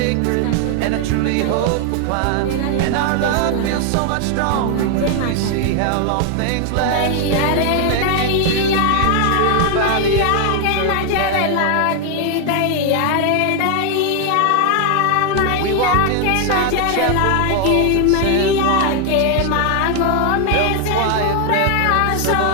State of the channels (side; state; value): both; different; correlation 0.00